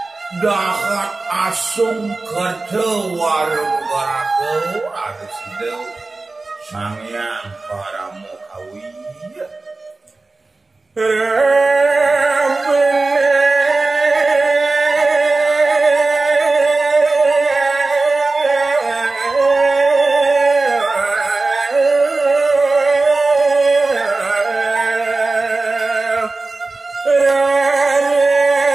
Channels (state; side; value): quieter; left; 3.4 dB